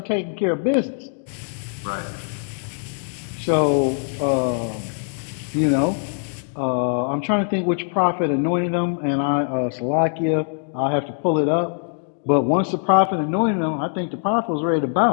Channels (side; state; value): right; silent; 64 dB below the other